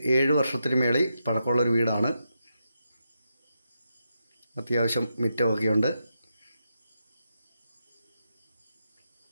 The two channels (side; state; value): both; inverted; correlation -0.85